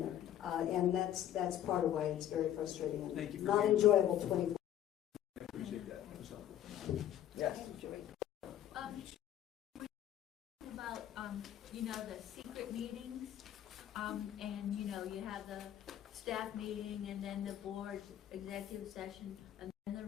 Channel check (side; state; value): right; quieter; 11.4 dB